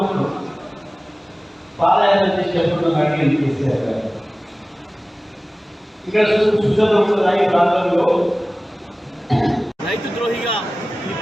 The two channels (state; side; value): normal; both; correlation 0.98